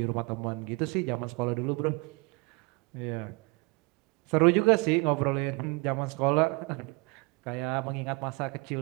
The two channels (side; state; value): left; quieter; 28.3 dB